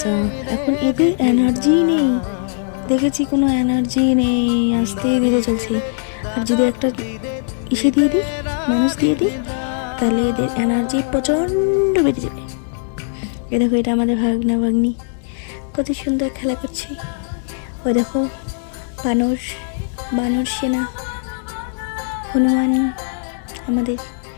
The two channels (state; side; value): silent; right; digital silence